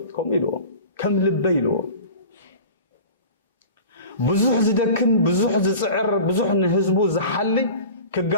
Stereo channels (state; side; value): inverted; both; correlation -0.38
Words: كم يلو كم لبي يلو بزح زدكن بزح زصعر بزح نحزبو زحلي